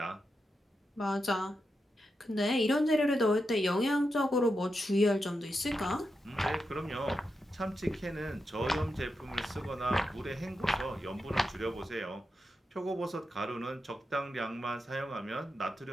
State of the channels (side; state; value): both; normal; correlation 0.87